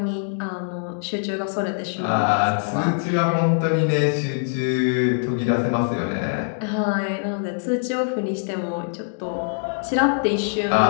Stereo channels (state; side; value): silent; right; digital silence